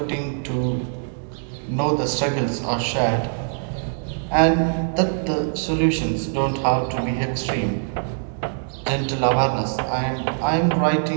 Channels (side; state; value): left; silent; digital silence